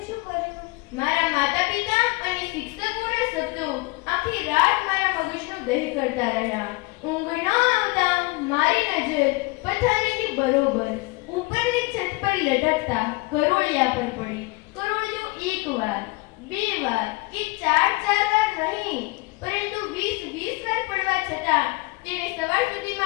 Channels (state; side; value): quieter; right; 23.9 dB